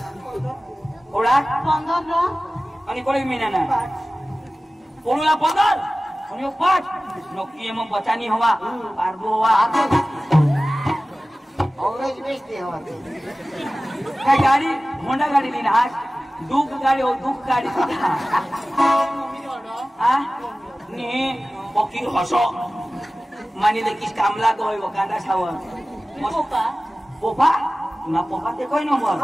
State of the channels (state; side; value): normal; both; correlation 0.97